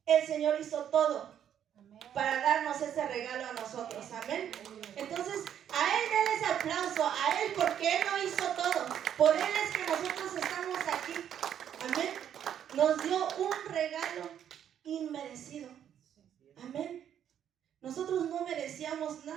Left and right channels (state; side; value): quieter; left; 9.6 dB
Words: El Señor hizo todo para darnos ese regalo a nosotros. Amén. Entonces, a Él denle ese aplauso, a Él, porque Él lo hizo todo. Por Él es que nosotros estamos aquí. Amén. Nos dio un regalo inmerecido. Amén. Nosotros no merecíamos